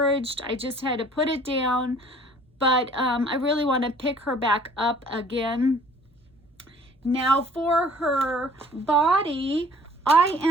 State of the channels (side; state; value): both; normal; correlation 0.54